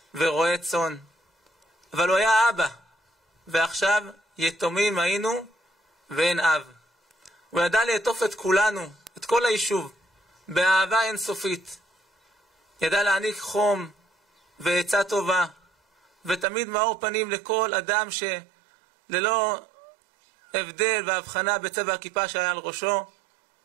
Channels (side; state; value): left; drops out; at 16.4 s